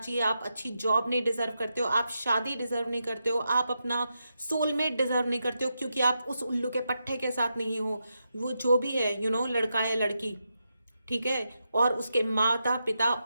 आप अच्छी जॉब नहीं डिजर्व करते हो, आप शादी डिजर्व नहीं करते हो, आप अपना सोलमेट डिजर्व नहीं करते हो, क्योंकि आप उस उल्लू के पट्टे के साथ नहीं हो, वो जो भी है, यू नो, लड़का या लड़की, ठीक है, और उसके माता पिता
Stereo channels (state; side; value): inverted; both; correlation -0.86